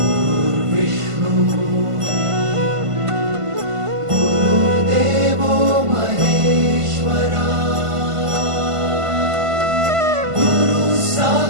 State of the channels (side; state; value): left; late; 1.5 ms